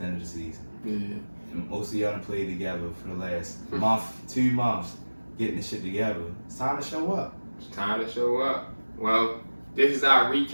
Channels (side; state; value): both; inverted; correlation -1.00